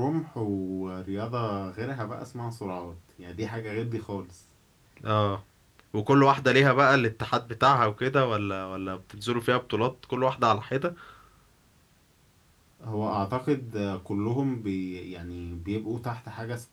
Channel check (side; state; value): both; identical; correlation 1.00